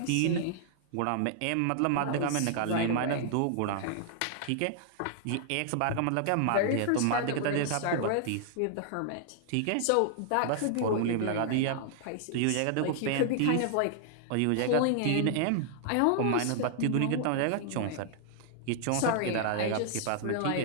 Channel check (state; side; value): different; both; correlation -0.01